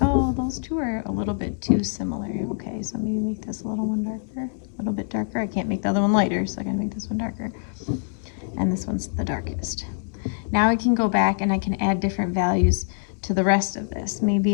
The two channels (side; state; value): right; silent; digital silence